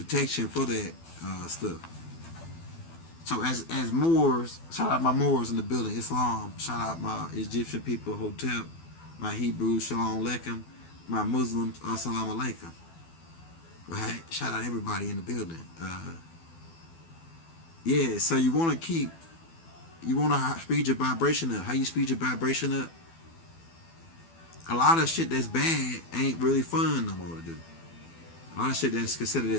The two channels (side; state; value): right; late; 12 ms